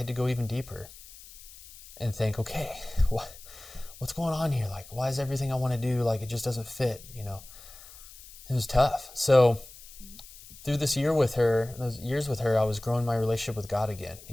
to go even deeper and think, okay, what's going on here? Like, why is everything I want to do, like, it just doesn't fit, It was tough. So through those years with her, I was growing my relationship with God again,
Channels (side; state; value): left; noise; hiss, 19 dB below the sound